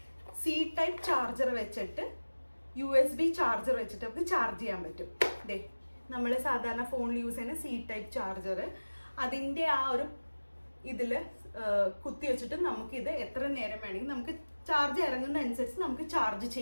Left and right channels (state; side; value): inverted; both; correlation -1.00